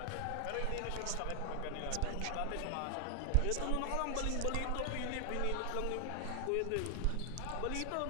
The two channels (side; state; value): both; different; correlation 0.00